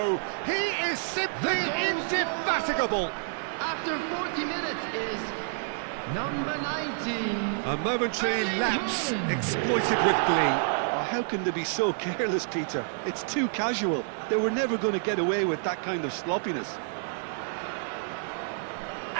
He is simply indefatigable. After 40 minutes is number 19. A momentary lapse exploited with glee. Oh, how can they be so careless, Peter? It's too casual. They were never going to get away with that kind of sloppiness.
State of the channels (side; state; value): left; silent; 59 dB below the other